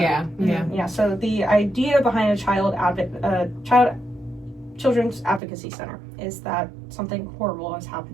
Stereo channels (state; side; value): drops out; left; at 5.4 s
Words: So the idea behind a children's advocacy center is that something horrible has